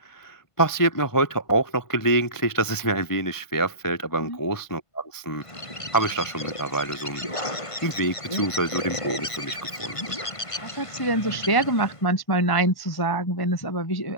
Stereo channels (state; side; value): late; right; 1.4 ms